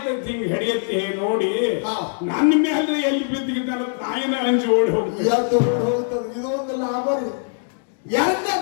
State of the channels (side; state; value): right; silent; 64 dB below the other